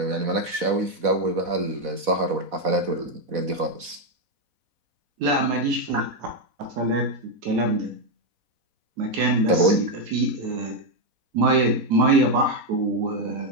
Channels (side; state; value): left; late; 4.1 ms